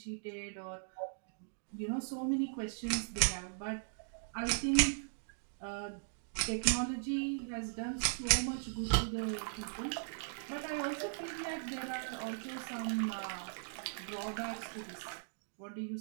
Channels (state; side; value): silent; left; digital silence